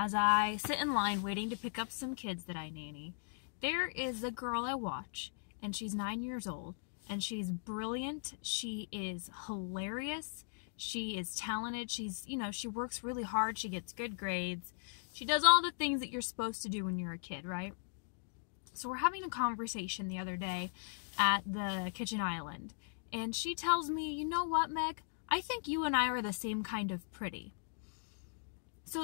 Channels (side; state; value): right; silent; digital silence